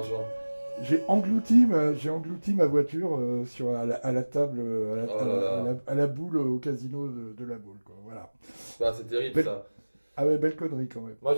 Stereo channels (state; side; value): inverted; both; correlation -1.00